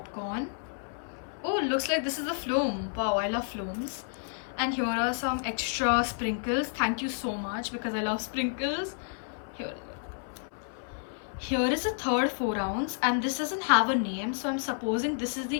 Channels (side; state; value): right; silent; 58 dB below the other